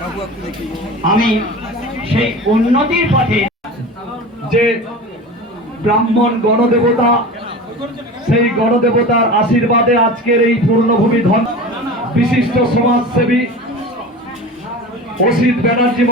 আমি সেই উন্নতির পথে যে ব্রাহ্মণ গণদেবতা, সেই গণদেবতার আশীর্বাদে আজকের এই পূর্ণভূমি ধন বিশিষ্ট সমাজসেবী অসিত ব্যানার্জি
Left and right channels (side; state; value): both; normal; correlation 0.33